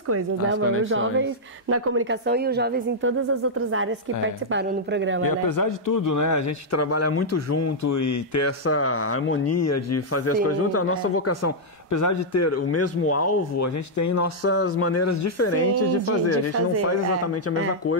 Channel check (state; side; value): normal; both; correlation -0.06